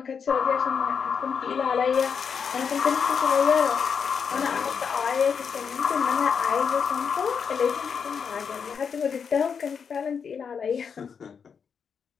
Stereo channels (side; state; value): right; quieter; 6.5 dB